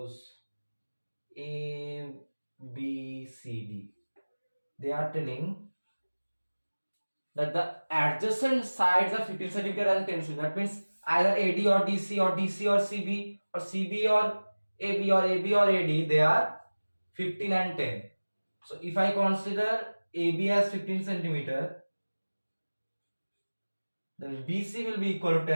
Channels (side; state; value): both; inverted; correlation -1.00